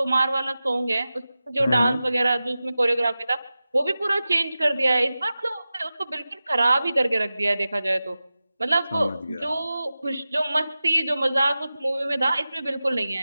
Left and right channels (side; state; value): both; inverted; correlation -0.95